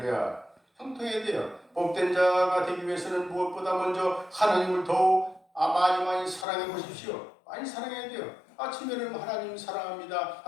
형통해야 돼요. 복된 자가 되기 위해서는 무엇보다 먼저 하나님을 더욱 많이 사랑해 보십시오. 많이 사랑해야 돼요. 아침에는 하나님 사랑합니다.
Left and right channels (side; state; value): right; drops out; at 6.5 s